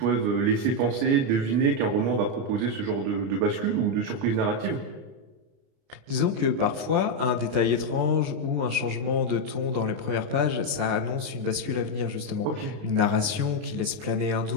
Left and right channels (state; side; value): late; left; 29 ms